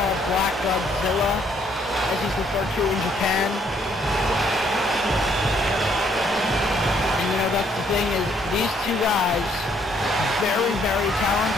Black Godzilla, as he's referred to in Japan. And you know, that's the thing, is these two guys, very, very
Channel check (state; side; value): normal; both; correlation 0.68